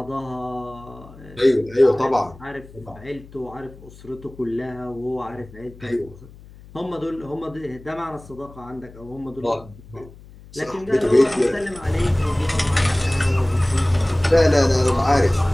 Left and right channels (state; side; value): noise; left; hum, 20 dB below the sound